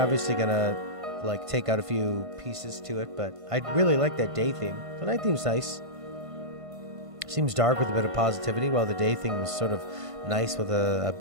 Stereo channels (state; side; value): late; left; 1.5 ms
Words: gonna like take out a few pieces to it, but I really like that day theme. The night theme's nice. Seems dark with a bit of positivity, while the day theme is sort of nice with a